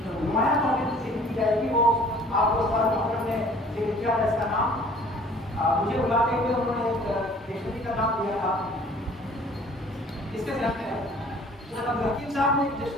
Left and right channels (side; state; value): both; normal; correlation 0.53